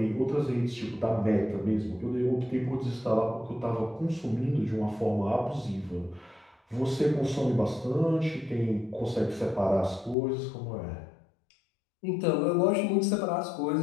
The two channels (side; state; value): right; drops out; at 10.2 s